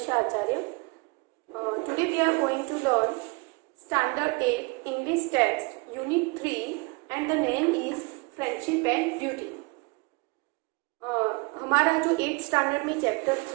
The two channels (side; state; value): left; quieter; 28.1 dB